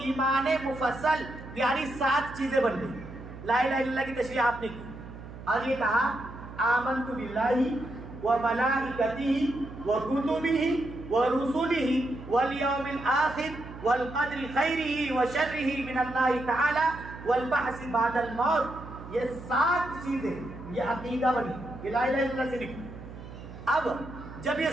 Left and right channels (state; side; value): noise; right; hum, 14 dB below the sound